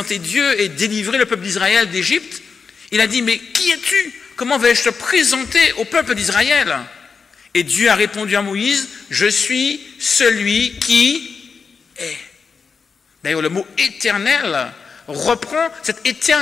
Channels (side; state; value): right; quieter; 5.4 dB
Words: Dieu et délivrer le peuple d'Israël d'Égypte, il a dit, mais qui es-tu? Comment vais-je te présenter au peuple d'Israël? Et Dieu a répondu à Moïse, je suis celui qui est. D'ailleurs, le mot éternel reprend cette